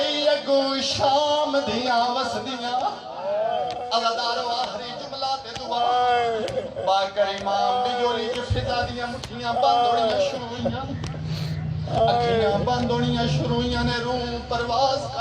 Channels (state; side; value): identical; both; correlation 1.00